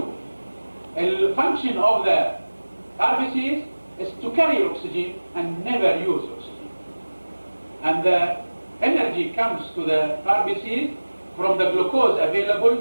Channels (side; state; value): both; inverted; correlation -1.00